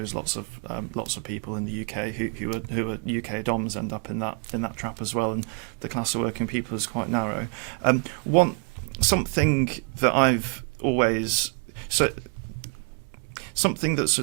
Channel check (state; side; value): quieter; left; 34.8 dB